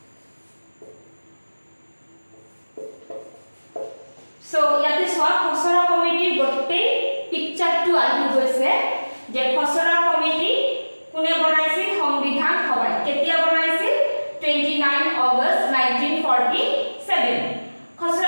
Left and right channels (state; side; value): inverted; both; correlation -1.00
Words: সো ইয়াতে সোৱা খসড়া কমিটিৰ গোটেই পিকচাৰটো আহি গৈছে যে খসড়া কমিটি কোনে বনাইছিল? সংবিধান সভাই। কেতিয়া বনাইছিল? 29 আগষ্ট 1947।